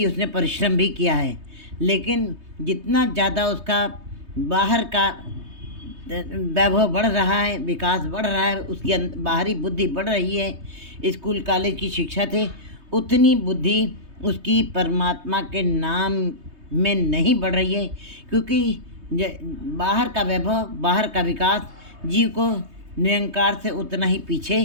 उसने परिश्रम भी किया है। लेकिन जितना ज़्यादा उसका बाहर का वैभव बढ़ रहा है, विकास बढ़ रहा है, उसकी बाहरी बुद्धि बढ़ रही है, स्कूल कॉलेज की शिक्षा से, उतनी बुद्धि उसकी परमात्मा के नाम में नहीं बढ़ रही है। क्योंकि बाहर का वैभव, बाहर का विकास जीव को निरंकार से उतना ही पीछे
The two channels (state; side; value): late; left; 3.2 ms